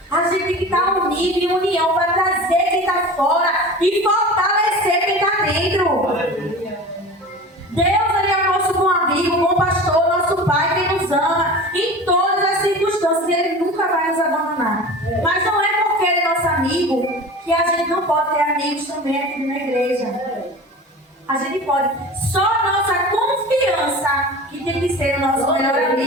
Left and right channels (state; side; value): normal; both; correlation 0.35